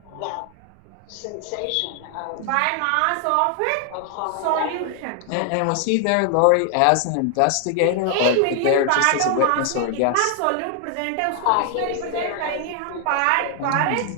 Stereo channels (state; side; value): different; both; correlation 0.00